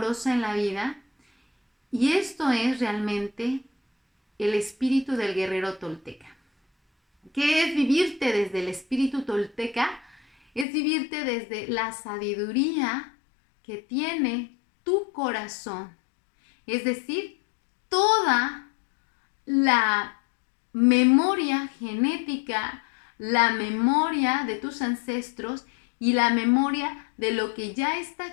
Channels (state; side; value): drops out; right; at 10.7 s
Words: en la vida, y esto es realmente el espíritu del guerrero tolteca. ¿Qué es vivirte desde el espíritu tolteca? Es vivirte desde la sabiduría que tiene tu corazón, es decir, toda la memoria genética, la memoria de tus ancestros y la memoria de lo que ya está